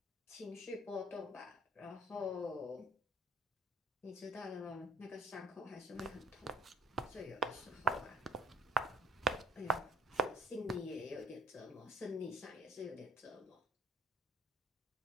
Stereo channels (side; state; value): both; normal; correlation 0.54